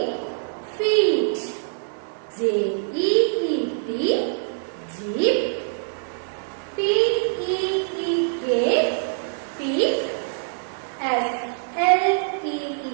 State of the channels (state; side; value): silent; left; 59 dB below the other